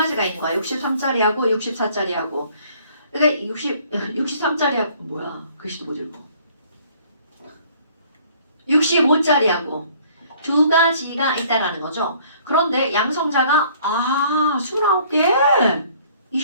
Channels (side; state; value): both; inverted; correlation -0.57